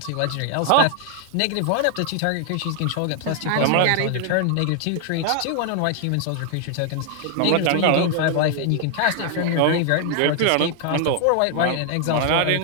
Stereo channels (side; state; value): both; different; correlation 0.00